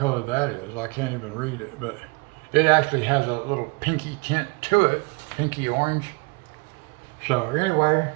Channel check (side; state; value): left; quieter; 28.0 dB